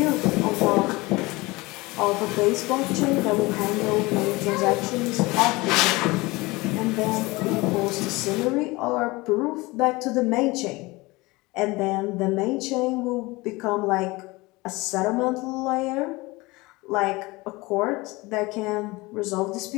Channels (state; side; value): quieter; right; 22.6 dB